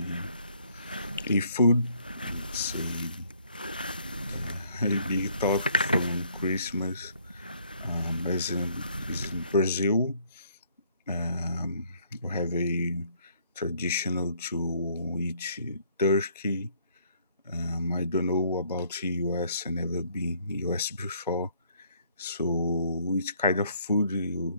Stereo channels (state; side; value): inverted; both; correlation -0.64